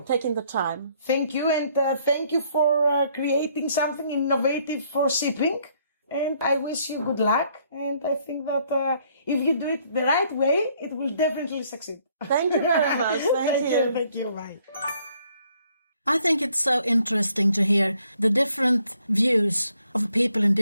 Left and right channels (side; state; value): both; inverted; correlation -0.67